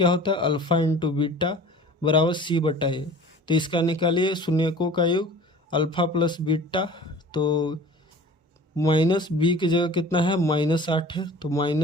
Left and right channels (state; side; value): normal; both; correlation 0.43